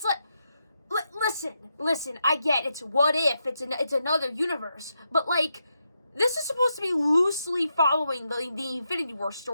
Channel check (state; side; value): inverted; both; correlation -0.84